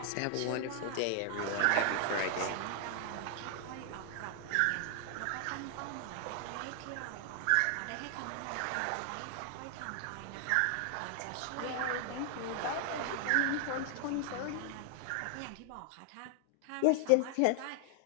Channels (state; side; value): different; both; correlation 0.00